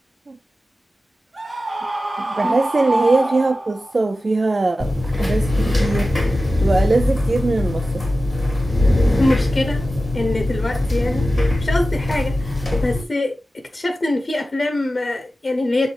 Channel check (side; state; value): both; normal; correlation 0.94